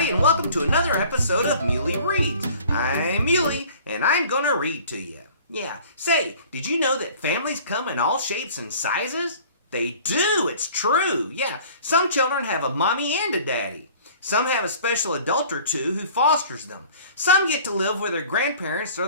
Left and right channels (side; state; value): both; inverted; correlation -0.49